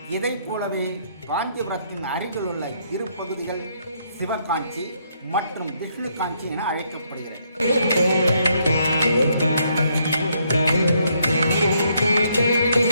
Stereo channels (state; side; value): inverted; both; correlation -0.72